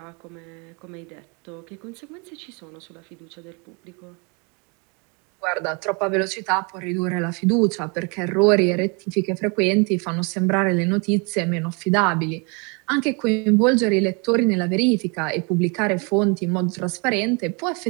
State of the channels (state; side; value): quieter; left; 32.1 dB